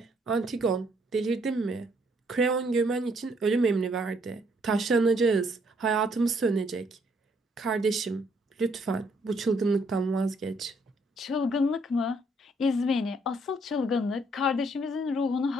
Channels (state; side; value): normal; both; correlation 0.68